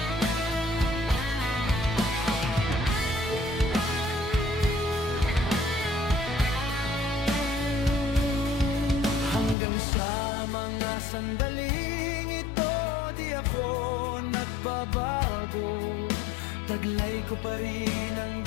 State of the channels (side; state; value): right; drops out; at 9.6 s